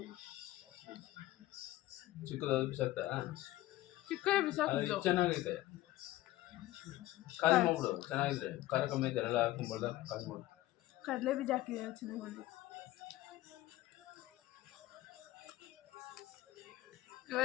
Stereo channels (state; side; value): quieter; right; 16.1 dB